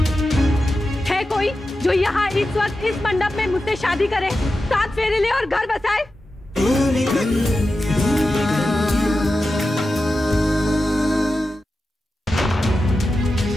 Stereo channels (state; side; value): normal; both; correlation 0.92